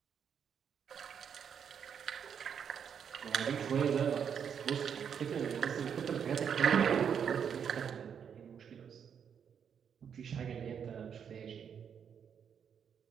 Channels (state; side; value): quieter; left; 7.6 dB